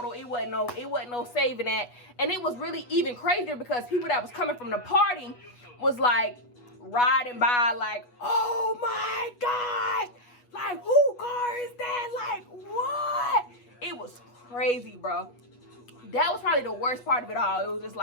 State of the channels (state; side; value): late; right; 8.2 ms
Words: It wasn't no saving that. And it was really even crazier because people that was coming from the party was like riding by like, oh my God, like, who car is that? Like, what? It was crazy, bro. That was probably the worst part of it all. It was just